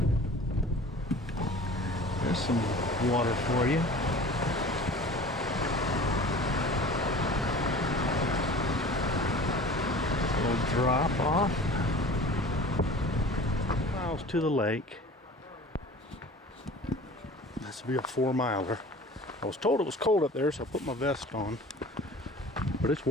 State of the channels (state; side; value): normal; both; correlation 0.42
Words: There's some water for you. A little drop off. Miles to the lake. This will be a 4-miler. I was told it was cold up there, so I put my vest on. But it's